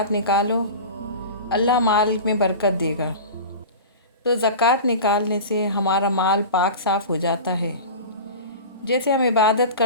निकालो, अल्लाह माल में बरकत देगा। तो ज़कात निकालने से हमारा माल पाक साफ़ हो जाता है। जैसे हम इबादत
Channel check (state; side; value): inverted; both; correlation -0.32